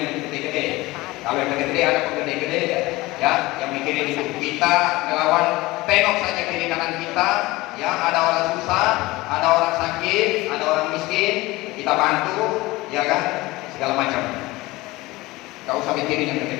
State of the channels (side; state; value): right; quieter; 20.3 dB